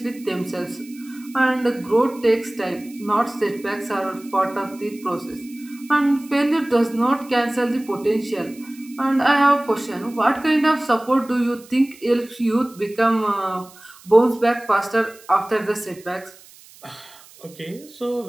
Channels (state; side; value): noise; right; hiss, 23 dB below the sound